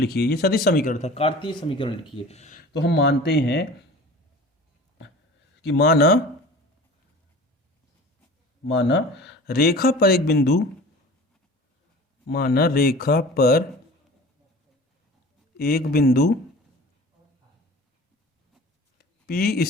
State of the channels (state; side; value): normal; both; correlation 0.40